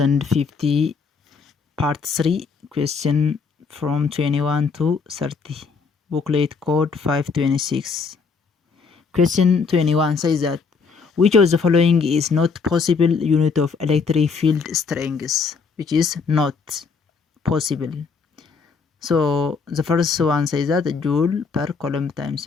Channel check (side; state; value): right; quieter; 5.1 dB